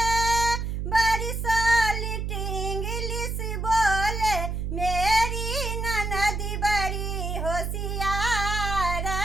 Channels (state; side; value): noise; right; hum, 3 dB below the sound